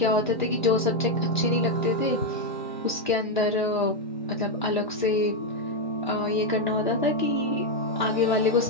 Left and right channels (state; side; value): normal; both; correlation 0.03